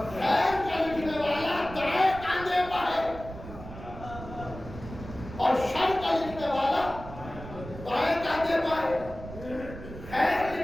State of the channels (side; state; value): right; noise; rumble, 13 dB below the sound